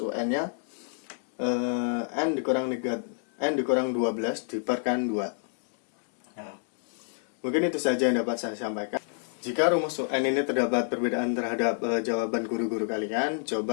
N dikurang 12 diperkan 2. Nah, mungkin itu saja yang dapat saya sampaikan. Jika rumus UN ini terdapat perbedaan terhadap jawaban guru-guru kalian,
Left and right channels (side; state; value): right; silent; digital silence